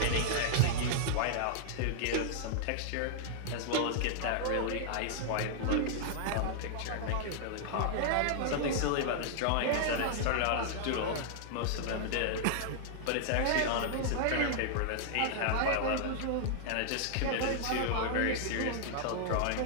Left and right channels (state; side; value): different; both; correlation -0.01